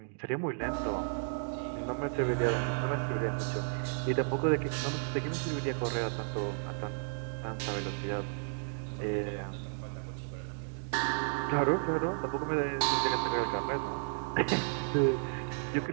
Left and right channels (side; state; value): left; silent; 56 dB below the other